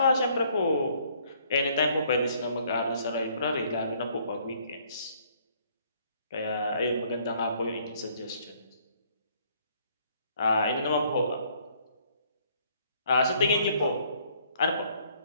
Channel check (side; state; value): both; inverted; correlation -0.63